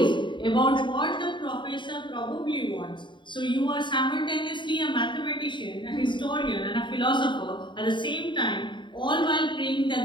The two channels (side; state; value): right; late; 0.23 ms